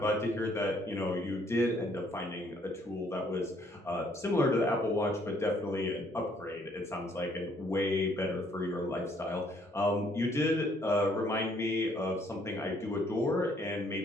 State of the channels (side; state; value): both; normal; correlation 0.65